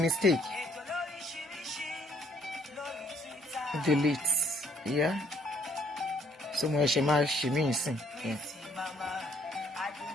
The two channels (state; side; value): normal; both; correlation 0.65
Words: Delete. Yeah. So mo ṣe máa ṣe mí ìsìn. Yeah.